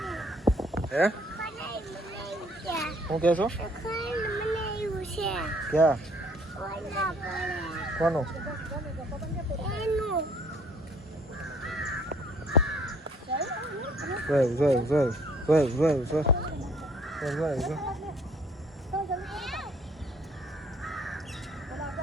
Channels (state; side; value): normal; both; correlation 0.60